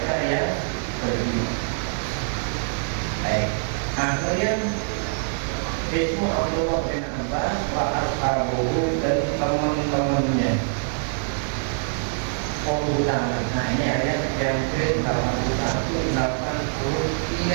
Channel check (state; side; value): silent; left; digital silence